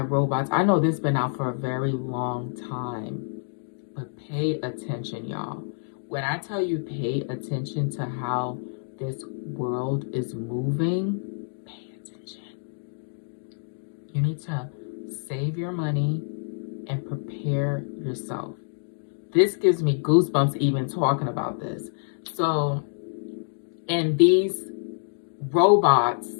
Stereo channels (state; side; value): silent; right; digital silence